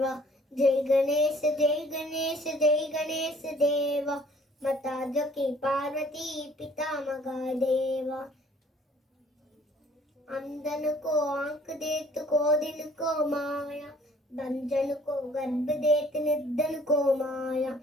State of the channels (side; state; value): both; normal; correlation 0.57